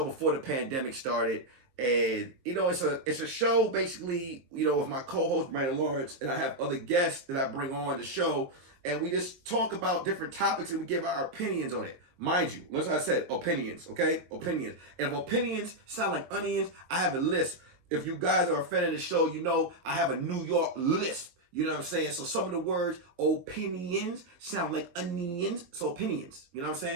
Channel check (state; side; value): late; left; 22 ms